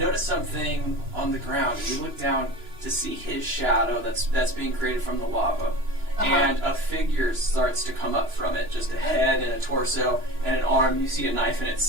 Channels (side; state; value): left; late; 2.9 ms